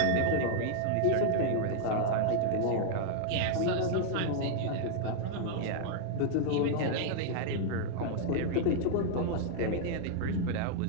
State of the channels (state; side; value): different; both; correlation -0.01